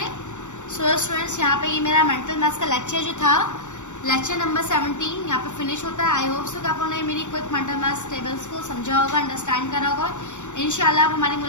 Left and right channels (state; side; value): late; right; 0.85 ms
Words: सो स्टूडेंट्स, यहाँ पे ये मेरा मेंटल मैथ्स का लेक्चर जो था लेक्चर नंबर 17 यहाँ पे फिनिश होता है। आई होप सो कि आप लोगों ने मेरी क्विक मेंटल मैथ्स टेबल्स को समझा होगा, अंडरस्टैंड करा होगा। इंशाल्लाह अब हमारी